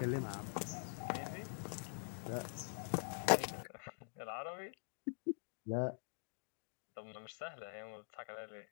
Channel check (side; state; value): right; silent; digital silence